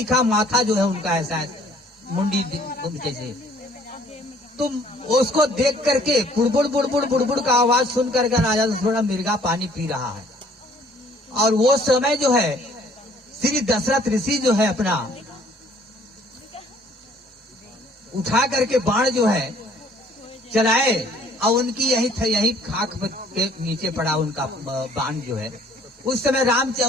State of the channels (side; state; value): both; normal; correlation 0.58